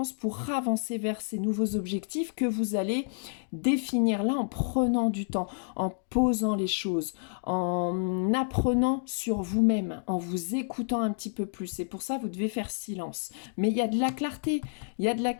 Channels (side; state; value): right; silent; digital silence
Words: pour avancer vers ces nouveaux objectifs que vous allez définir là en prenant du temps, en posant les choses, en apprenant sur vous-même, en vous écoutant un petit peu plus. Et pour ça, vous devez faire silence. Mais il y a de la clarté. Il y a de la